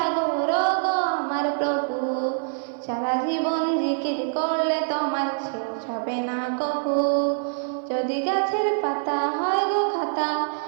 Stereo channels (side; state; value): left; silent; 56 dB below the other